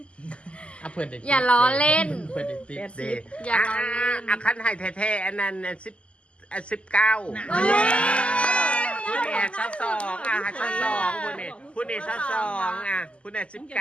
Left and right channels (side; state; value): right; late; 0.056 ms